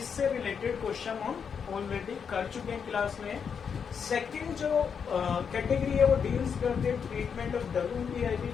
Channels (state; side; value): quieter; right; 6.7 dB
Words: रिलेटेड क्वेश्चन हम ऑलरेडी कर चुके हैं क्लास में। सेकंड जो कैटेगरी है वो डील्स करते हैं ट्रीटमेंट ऑफ WIP,